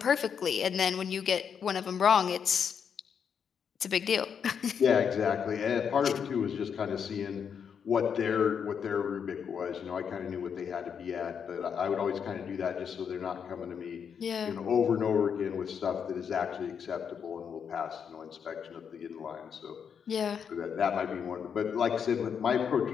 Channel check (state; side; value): quieter; right; 7.2 dB